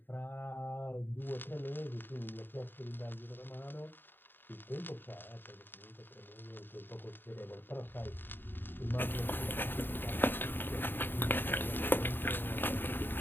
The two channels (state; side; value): late; right; 0.094 ms